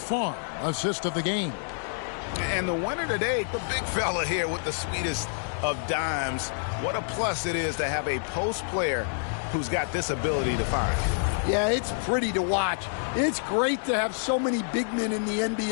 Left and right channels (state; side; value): silent; right; digital silence